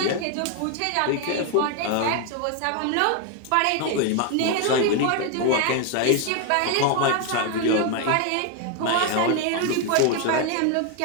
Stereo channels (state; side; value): different; both; correlation 0.01